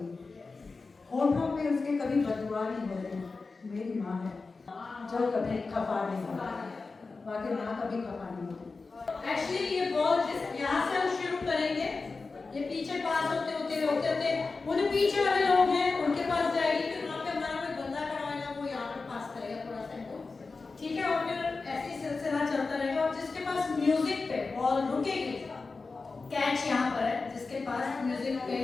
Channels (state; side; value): quieter; right; 4.1 dB